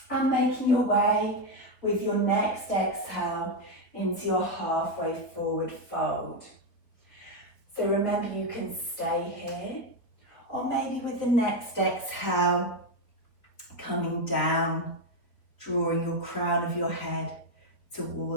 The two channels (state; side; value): late; right; 4.2 ms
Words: and making your way with your next exhale into your halfway forward fold. So remember, you can stay here, or maybe with the next exhale, coming down, drawing your crown of your head